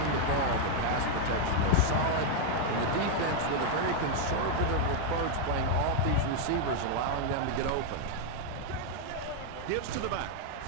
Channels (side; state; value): both; different; correlation 0.00